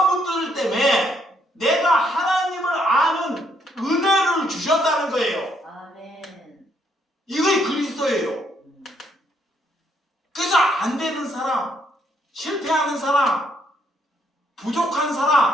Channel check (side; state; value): both; normal; correlation 0.72